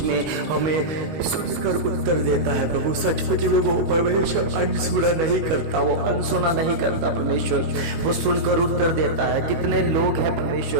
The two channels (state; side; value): late; left; 19 ms